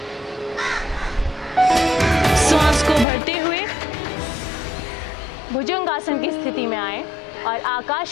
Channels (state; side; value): drops out; right; at 3.1 s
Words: श्वास को भरते हुए भुजंगासन की स्थिति में आए और